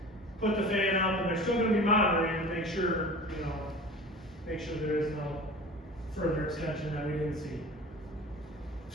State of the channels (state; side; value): normal; both; correlation 0.39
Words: put the fan up, and they're still gonna be monitoring to make sure, you know, make sure there is no further extension that we didn't see.